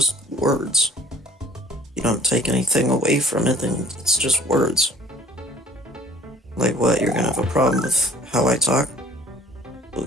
words. You don't take anything away from it, then it's just words. Like what, you're gonna have a problem with how I talk? Well,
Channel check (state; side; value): normal; both; correlation 0.54